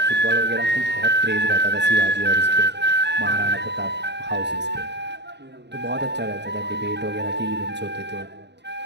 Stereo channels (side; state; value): left; late; 0.50 ms